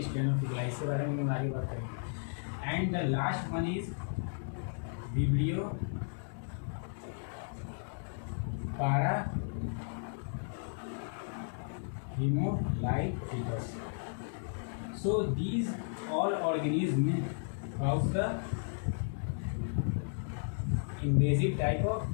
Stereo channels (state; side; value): silent; right; digital silence